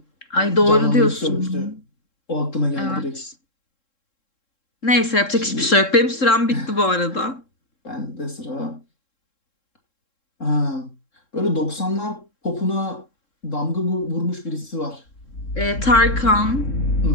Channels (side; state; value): right; late; 3.7 ms